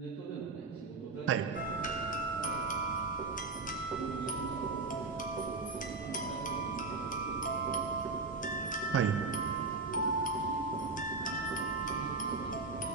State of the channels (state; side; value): quieter; left; 3.9 dB